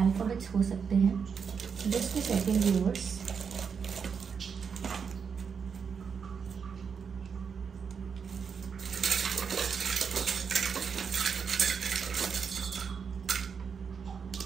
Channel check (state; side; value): quieter; left; 6.4 dB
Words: हो सकते हैं। Just a second viewers.